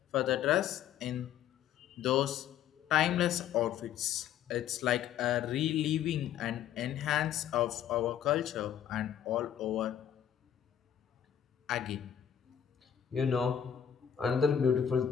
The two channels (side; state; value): right; quieter; 9.6 dB